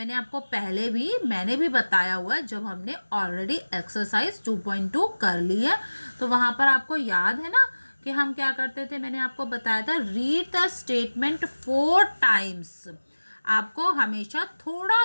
आपको पहले भी मैंने भी बताया हुआ है जब हमने ऑलरेडी एक्सरसाइज 2.2 कर ली है, तो वहाँ पर आपको याद है ना कि हम क्या करते थे? मैंने आपको बताया था रीड द स्टेटमेंट 4 टाइम्स। आपको हमेशा थोड़ा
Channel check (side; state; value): both; inverted; correlation -1.00